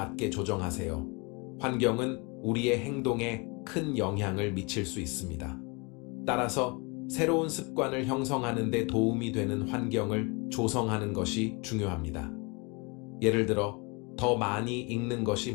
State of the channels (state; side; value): quieter; right; 29.8 dB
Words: 조정하세요. 환경은 우리의 행동에 큰 영향을 미칠 수 있습니다. 따라서 새로운 습관을 형성하는 데 도움이 되는 환경을 조성하는 것이 중요합니다. 예를 들어 더 많이 읽는 것이